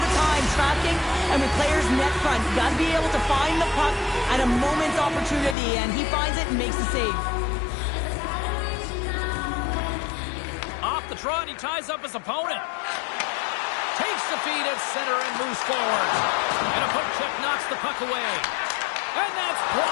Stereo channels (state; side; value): drops out; right; at 5.6 s